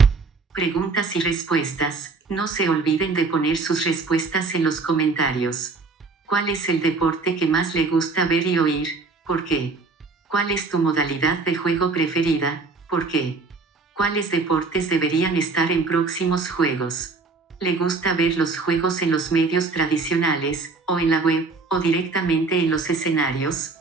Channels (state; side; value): quieter; left; 4.1 dB